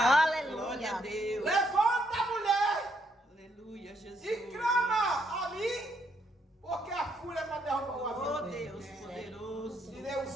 Aleluia. Glória a Deus. Levanta, mulher, Aleluia, Jesus. e clama ali, porque a fúria vai derrubar o avião. Oh, dele. Deus poderoso. Tirei o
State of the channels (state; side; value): normal; both; correlation 0.74